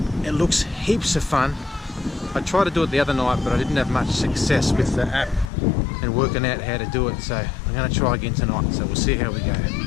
It looks heaps of fun. I tried to do it the other night, but I didn't have much success with the app and working out how to do it, so I'm going to try again tonight, so we'll see how we go.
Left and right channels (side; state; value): right; drops out; at 5.5 s